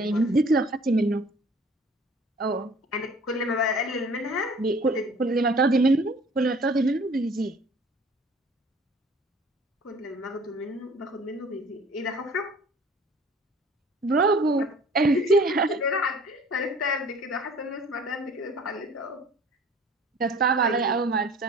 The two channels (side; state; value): both; normal; correlation 0.50